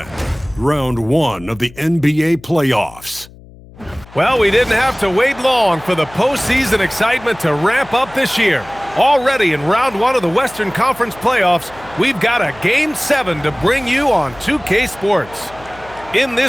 Round 1 of the NBA playoffs. Well, we didn't have to wait long for the postseason excitement to ramp up this year. Already in Round 1 of the Western Conference playoffs, we've got a Game 7 to bring you on 2K Sports. In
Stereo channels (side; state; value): left; noise; hum, 22 dB below the sound